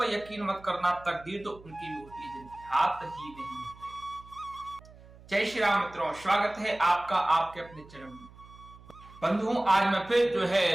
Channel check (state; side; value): noise; right; hum, 21 dB below the sound